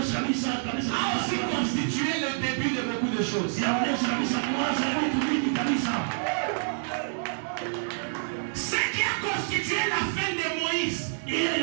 kabisa a aussi constitué le début de beaucoup de choses. inaonyesha kabisa mwanzo wa vitu vingi kabisa. Ce qui a constitué la fin de Moïse Ile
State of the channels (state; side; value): silent; left; digital silence